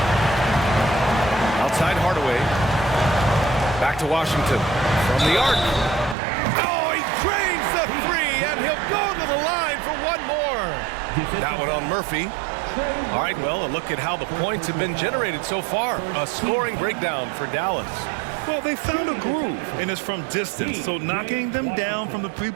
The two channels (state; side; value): drops out; left; at 6.2 s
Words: Outside Hardaway. Back to Washington. From the arc. Oh, he drains the three, and he'll go to the line for one more. That one on Murphy. All right, well, a look at how the points have been generated so far. A scoring breakdown for Dallas. Well, they found a groove, and it's from distance, so knocking them down from the